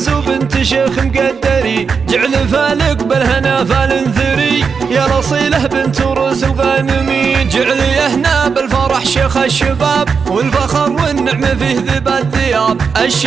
وبنت شيخ مقدري، جعل فالك بالهنا فالنثري يا الاصيله بنت روس الغانمين. جعل يهنا بالفرح شيخ الشباب والفخر والنعمه فيه ذب الثياب.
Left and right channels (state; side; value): quieter; left; 5.7 dB